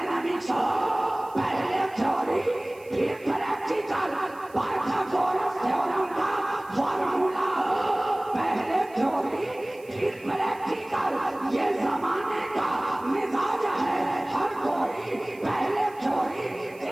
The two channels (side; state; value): right; noise; hiss, 26 dB below the sound